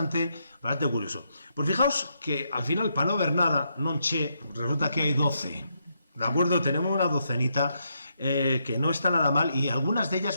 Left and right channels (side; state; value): both; inverted; correlation -0.79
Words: curioso. Pues fijaos que al final, para no ver nada, non che, resulta que hay 12. ¿De acuerdo? Tenemos una docenita que no está nada mal y algunas de